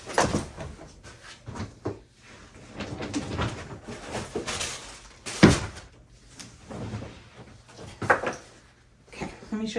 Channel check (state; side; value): identical; both; correlation 1.00